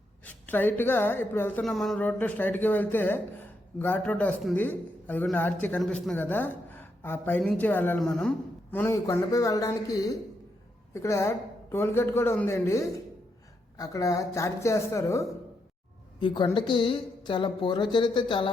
స్ట్రైట్గా ఇప్పుడు వెళ్తున్నాం మనం రోడ్లో, స్ట్రైట్గా వెళ్తే ఘాట్ రోడ్ వస్తుంది. అది కూడా ఆర్చి కనిపిస్తుంది కదా, ఆ పైనుంచి వెళ్ళాలి మనం ఈ కొండపై వెళ్ళడానికి ఇక్కడ టోల్ గేట్ కూడా ఉందండి. అక్కడ ఛార్జ్ చేస్తారు. ఈ కొండకి చాలా పూర్వచరిత్ర చాలా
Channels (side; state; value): both; normal; correlation 0.81